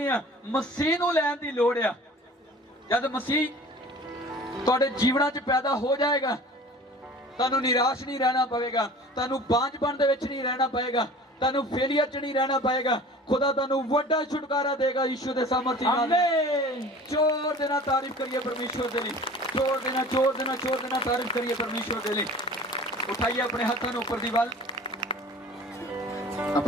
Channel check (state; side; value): normal; both; correlation 0.43